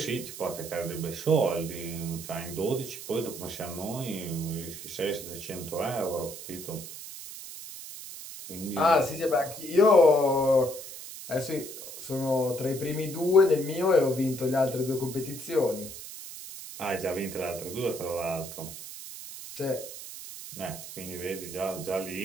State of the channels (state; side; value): noise; right; hiss, 11 dB below the sound